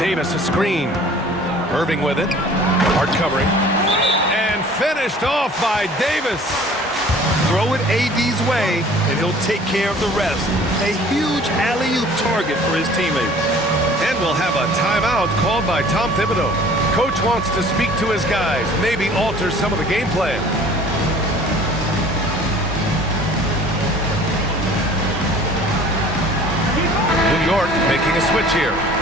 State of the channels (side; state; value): both; normal; correlation 0.49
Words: a screen. Irving with it. Hart covering. And finished off by Davis. Throw it AD's way, and he'll take care of the rest. A huge alley-oop target for his teammates. And we'll have a timeout called by Tom Thibodeau. Coach wants to speak to his guys, maybe alter some of the game plan. New York making a switch here.